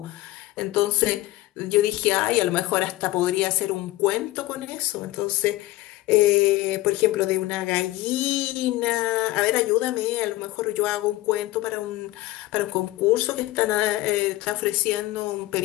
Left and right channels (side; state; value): right; quieter; 17.7 dB